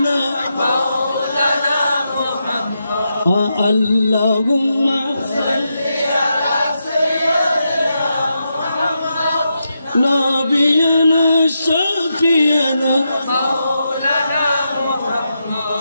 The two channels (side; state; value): both; inverted; correlation -0.85